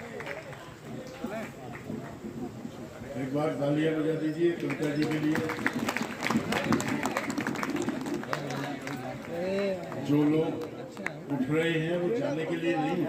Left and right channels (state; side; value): identical; both; correlation 1.00